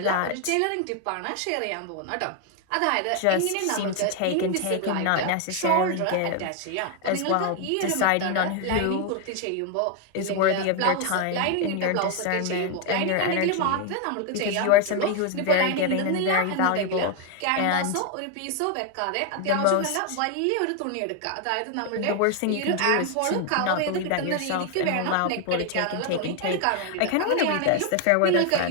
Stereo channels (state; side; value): different; both; correlation 0.01